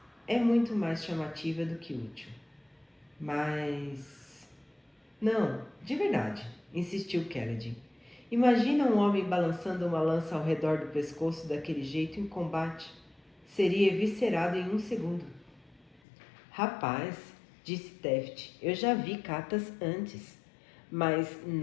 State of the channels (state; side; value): drops out; right; at 16.0 s